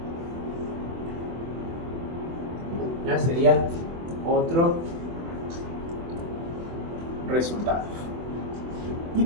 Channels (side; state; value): left; late; 24 ms